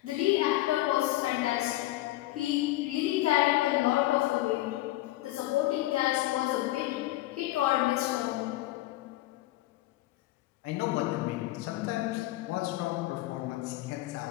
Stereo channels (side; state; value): right; quieter; 16.7 dB